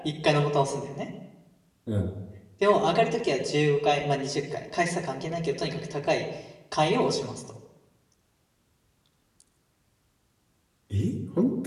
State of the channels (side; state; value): both; identical; correlation 1.00